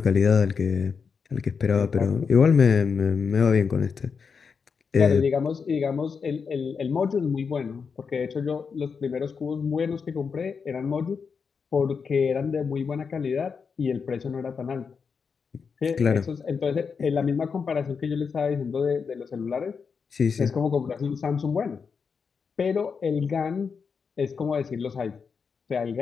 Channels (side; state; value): right; quieter; 5.8 dB